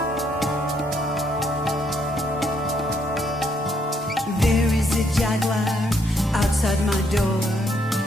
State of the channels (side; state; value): both; normal; correlation 0.72